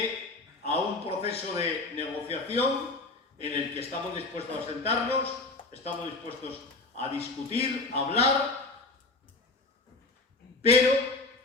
a un proceso de negociación en el que estamos dispuestos a sentarnos, estamos dispuestos a discutir, a hablar, pero,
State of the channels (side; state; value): right; quieter; 3.4 dB